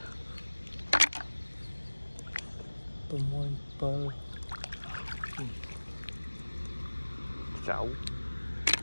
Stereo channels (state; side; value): inverted; both; correlation -1.00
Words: tôi mua bơ 6